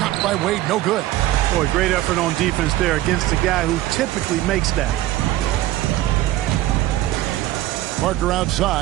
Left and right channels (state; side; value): quieter; left; 15.3 dB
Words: by Wade, no good. Boy, great effort on defense there against a guy who typically makes that. Parker